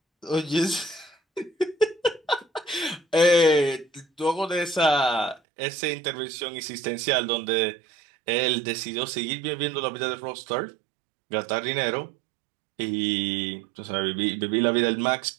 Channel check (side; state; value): left; drops out; at 5.4 s